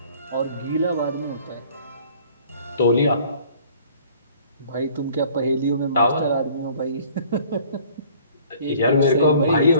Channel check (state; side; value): inverted; both; correlation -0.53